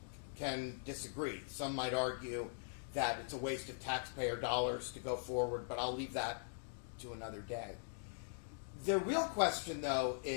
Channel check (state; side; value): silent; right; digital silence